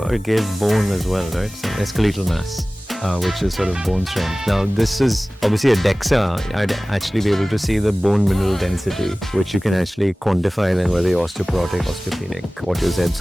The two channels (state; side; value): normal; both; correlation 0.98